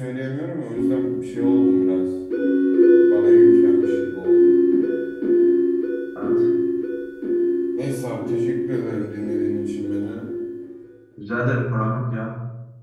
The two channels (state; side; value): identical; both; correlation 1.00